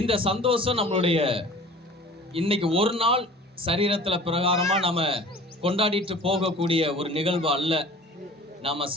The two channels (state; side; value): normal; both; correlation 0.43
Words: சந்தோஷம் நம்மளுடைய இன்னைக்கு ஒரு நாள் சரீரத்துல பிரகாரமா நம்ம கொண்டாடிட்டு போகக்கூடிய ஒரு நிகழ்வு அல்ல. நாம